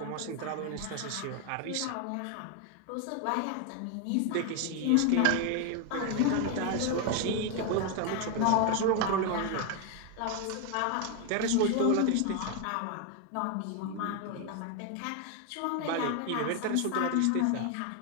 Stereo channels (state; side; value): different; both; correlation 0.01